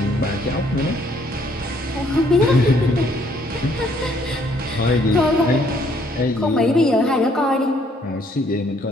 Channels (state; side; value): normal; both; correlation 0.65